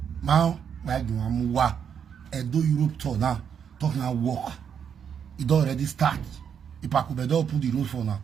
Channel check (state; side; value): quieter; left; 7.7 dB